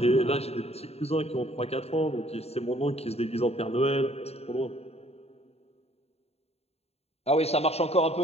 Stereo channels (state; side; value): late; right; 0.30 ms